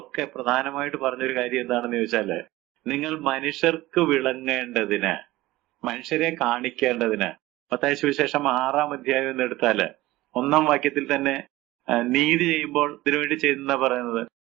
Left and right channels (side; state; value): left; quieter; 18.1 dB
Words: പ്രധാനമായിട്ട് പറഞ്ഞൊരു കാര്യം എന്താണെന്ന് ചോദിച്ചാല്, നിങ്ങൾ മനുഷ്യർക്ക് വിളങ്ങേണ്ടതിന്, മനുഷ്യരെ കാണിക്കേണ്ടതിന്. മത്തായി സുവിശേഷം 6-ാം അധ്യായം എന്ന് എടുത്താല് 1-ാം വാക്യത്തിൽ തന്നെ നീതി ചെയ്യുമ്പോൾ ഇതിനുവേണ്ടി ചെയ്യുന്ന പറയുന്നത്,